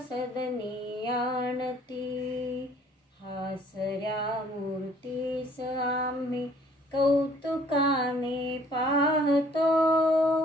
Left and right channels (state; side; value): normal; both; correlation 0.58